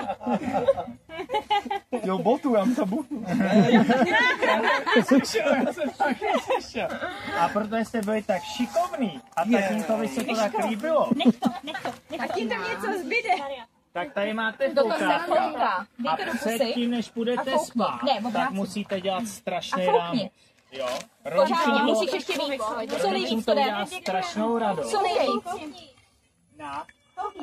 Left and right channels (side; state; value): both; identical; correlation 1.00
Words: Jo, botu, já jsem botu. Já jsem taky slyšel. A protože jste byli tak šikovný a tatínkovi se to tak líbilo. Tak jim tam něco zbyde. Tak tady máte foukáka. A předtím, než půjdete spát, tak musíte dělat strašný rámek. Jo, Pořádně, musíš ještě víc. Co nejvíc to dělá strašnou radost. Co nejvíc. Na.